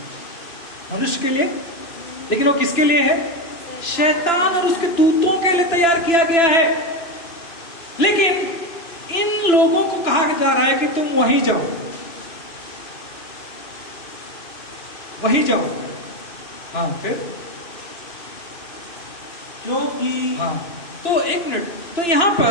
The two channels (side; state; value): right; late; 2.9 ms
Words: मनुष्य के लिए, लेकिन वो किसके लिए है? शैतान और उसके दूतों के लिए तैयार किया गया है। लेकिन इन लोगों को कहा जा रहा है कि तुम वहीं जाओ, वहीं जाओ। हाँ, फिर क्योंकि हाँ, तो एक मिनट, तो यहां